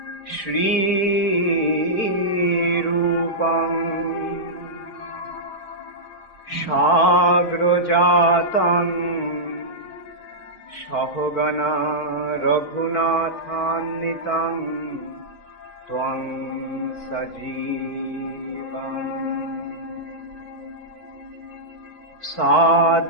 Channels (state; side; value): late; right; 4.5 ms